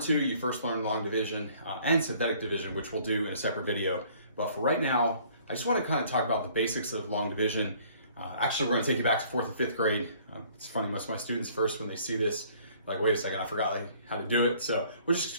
2, you first learn long division and synthetic division, which we'll do in a separate video. But for right now, I just want to kind of talk about the basics of long division. Actually, we're going to take you back to 4th and 5th grade. It's funny, most of my students first, when they see this, like, wait a second, I forgot how to do it. So we'll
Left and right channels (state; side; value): inverted; both; correlation -0.57